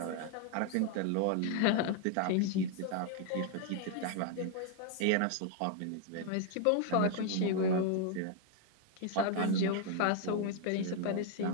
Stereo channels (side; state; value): both; different; correlation 0.00